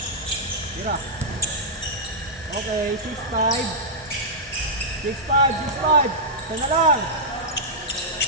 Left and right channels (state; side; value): normal; both; correlation -0.10